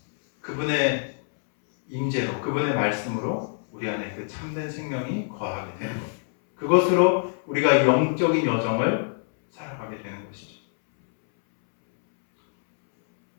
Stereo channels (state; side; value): silent; right; 62 dB below the other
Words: 그분의 임재로 그분의 말씀으로 우리 안에 그 참된 생명이 거하게 되는 겁니다. 그것으로 우리가 영적인 여정을 살아가게 되는 것이죠.